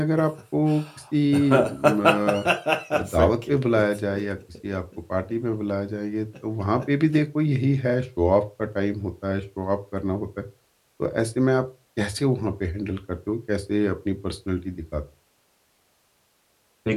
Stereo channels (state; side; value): identical; both; correlation 1.00